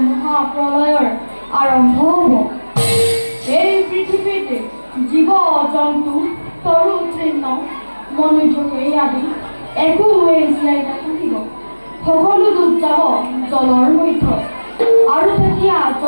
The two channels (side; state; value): both; inverted; correlation -1.00